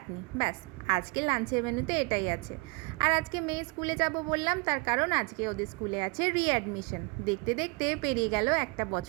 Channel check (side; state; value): left; quieter; 29.8 dB